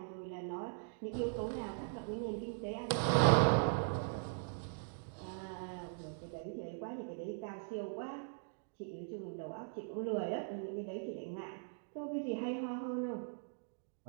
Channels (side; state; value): left; silent; digital silence